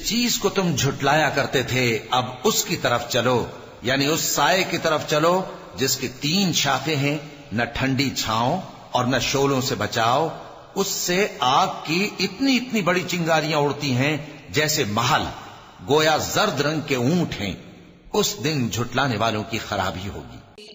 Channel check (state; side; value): identical; both; correlation 1.00